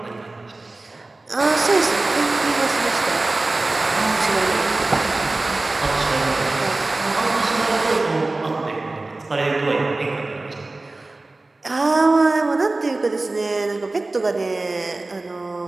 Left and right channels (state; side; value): quieter; left; 3.1 dB